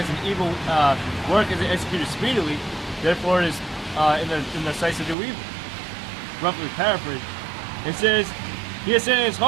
an evil work is executed speedily, therefore it is in the sights to do evil. Roughly paraphrased. It says, he has said in his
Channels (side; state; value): left; drops out; at 5.2 s